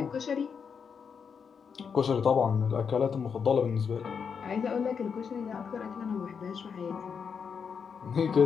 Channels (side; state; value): right; quieter; 6.4 dB